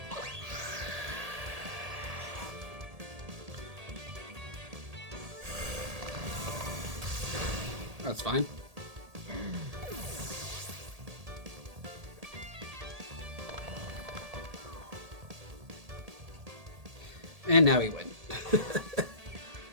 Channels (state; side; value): late; left; 1.8 ms